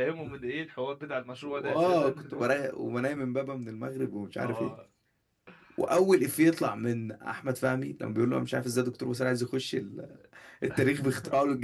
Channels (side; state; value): both; identical; correlation 1.00